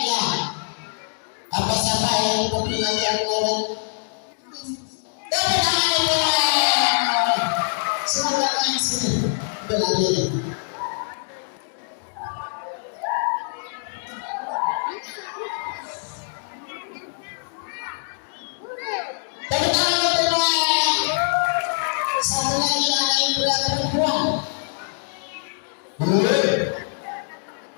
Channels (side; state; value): right; silent; digital silence